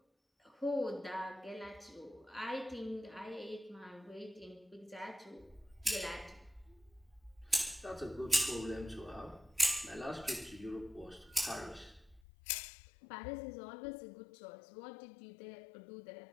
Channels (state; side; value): drops out; right; at 12.2 s